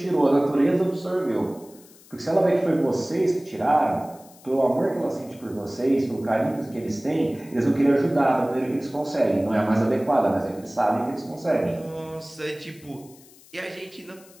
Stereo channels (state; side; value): noise; left; hiss, 24 dB below the sound